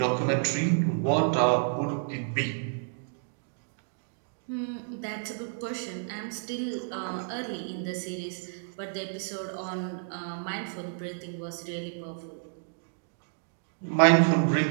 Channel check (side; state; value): left; silent; digital silence